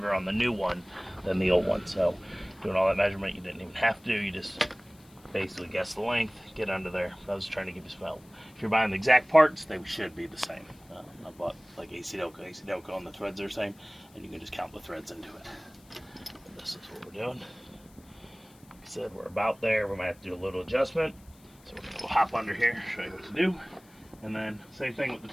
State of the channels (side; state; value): left; noise; hiss, 27 dB below the sound